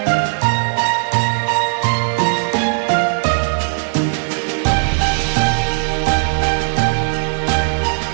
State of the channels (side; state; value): left; silent; digital silence